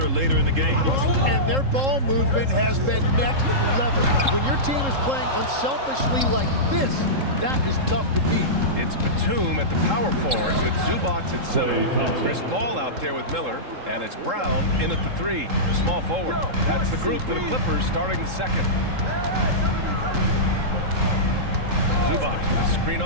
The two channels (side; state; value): left; late; 3.7 ms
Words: later in the game. And their ball movement has been next level. When your team is playing unselfishly like this, that is tough to beat. It's Batum at the power forward with Zubac at center. Chris Paul out there with Miller, and it's Brown in at the 3, small forward. That's the group for the Clippers starting the second. Zubac with a screen